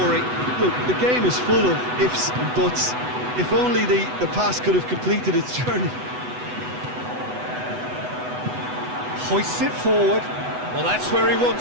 Look, the game is full of ifs and buts. If only the pass could have completed its journey. Hoists it forward. Well, that's where he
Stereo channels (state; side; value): late; left; 8.1 ms